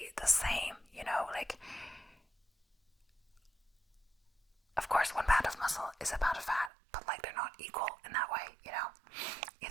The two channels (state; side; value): drops out; left; at 6.7 s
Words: the same, you know, like of course 1 pound of muscle is a pound of fat, but like they're not equal in that way, you know,